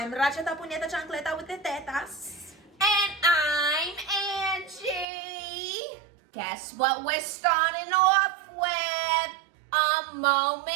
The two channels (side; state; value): left; drops out; at 5.1 s